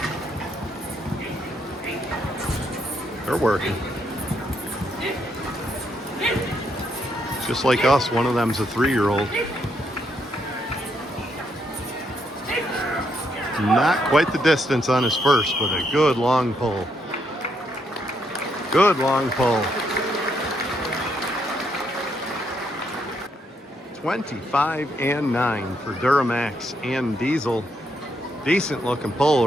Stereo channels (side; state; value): both; normal; correlation 0.76